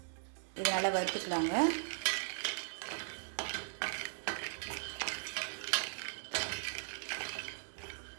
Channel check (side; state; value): left; silent; digital silence